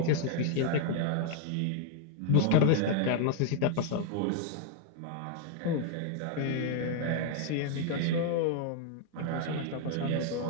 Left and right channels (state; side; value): different; both; correlation 0.00